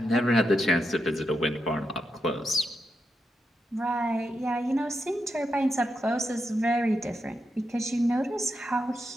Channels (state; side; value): normal; both; correlation 0.85